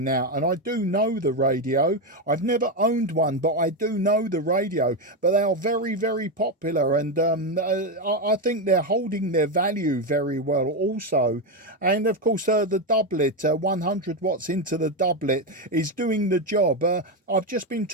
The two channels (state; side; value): normal; both; correlation 0.09